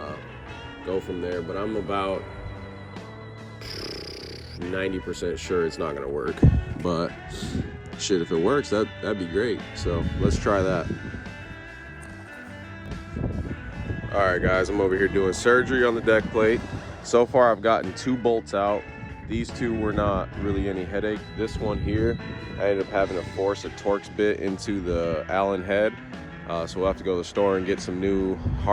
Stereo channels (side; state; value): both; identical; correlation 1.00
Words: go from there. But I'm about 90% sure it's not gonna work. But shit, if it works, that'd be great. So let's try that. All right guys, I'm over here doing surgery on the deck plate. So far I've gotten two bolts out. These two were not really any headache. This one here, I ended up having to force a Torx bit into the Allen head. So we'll have to go to the store and get some new